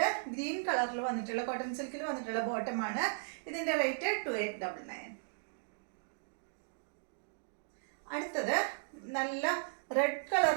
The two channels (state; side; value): silent; left; digital silence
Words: ഗ്രീൻ കളറിൽ വന്നിട്ടുള്ള കോട്ടൺ സിൽക്കിൽ വന്നിട്ടുള്ള ബോട്ടമാണ്. ഇതിൻ്റെ റേറ്റ് 2899. അടുത്തത് നല്ല റെഡ്